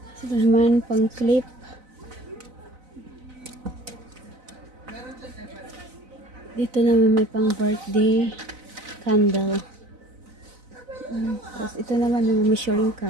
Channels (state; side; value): late; left; 4.0 ms